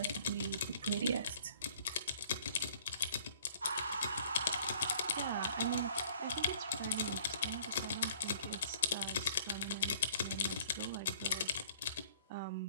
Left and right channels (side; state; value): both; inverted; correlation -0.55